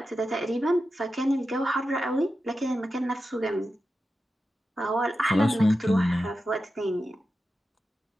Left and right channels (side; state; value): both; normal; correlation 0.91